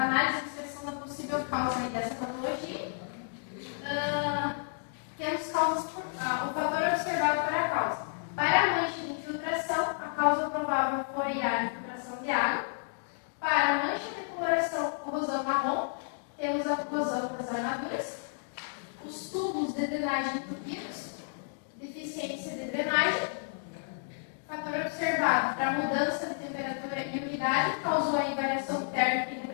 de inspeção da possível causa aí dessa patologia. Temos causas o fator observado para a causa. Para a mancha de infiltração, a causa provável foi a infiltração de água. Para a mancha de coloração, corrosão marrom, temos a corrosão das armaduras. Os tubos de drenagem entupidos, deficiência de drenagem. Fator observado para a mudança de temperatura e umidade causou a variação térmica e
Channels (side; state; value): right; silent; digital silence